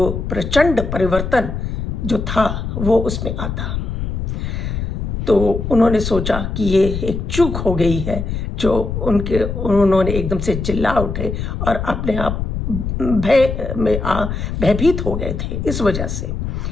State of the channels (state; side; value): noise; left; rumble, 4 dB below the sound